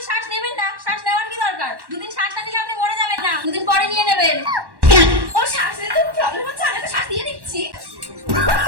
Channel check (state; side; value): late; left; 1.1 ms